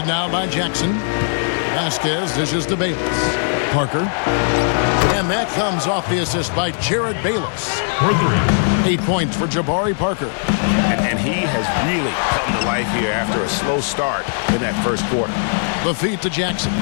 now by Jackson. Vasquez dishes to Bayless. Parker. And that comes off the assist by Jared Bayless. 8 points for Jabari Parker. And he has really come to life here after a slow start in that first quarter. The feed to Jackson.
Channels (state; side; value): silent; right; digital silence